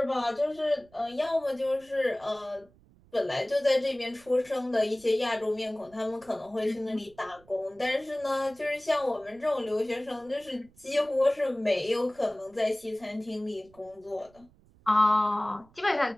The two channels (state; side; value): noise; right; rumble, 28 dB below the sound